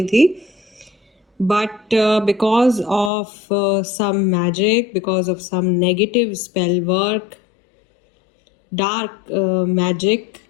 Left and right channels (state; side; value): drops out; right; at 3.1 s